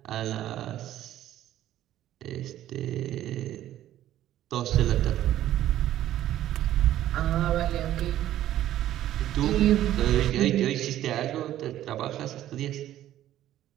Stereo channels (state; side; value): quieter; left; 12.8 dB